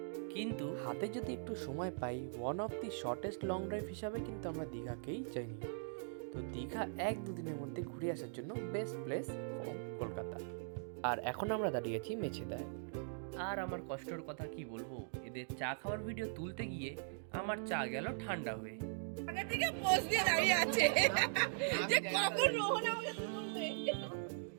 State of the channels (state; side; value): silent; left; digital silence